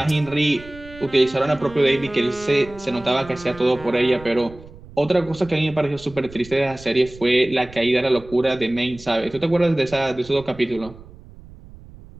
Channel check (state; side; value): noise; right; rumble, 19 dB below the sound